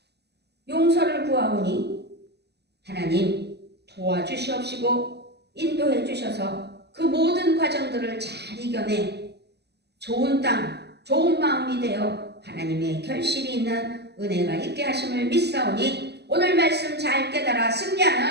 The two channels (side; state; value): left; late; 0.49 ms